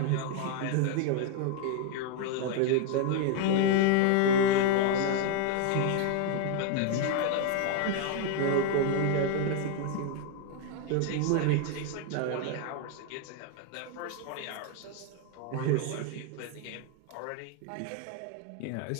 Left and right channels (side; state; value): both; different; correlation 0.01